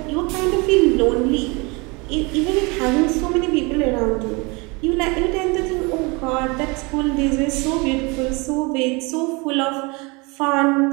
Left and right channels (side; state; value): left; quieter; 27.7 dB